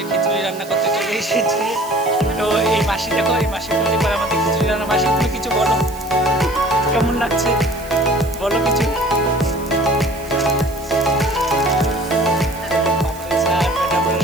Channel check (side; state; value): right; noise; hiss, 19 dB below the sound